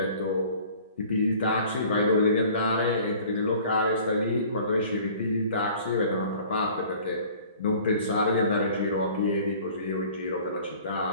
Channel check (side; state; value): both; inverted; correlation -0.49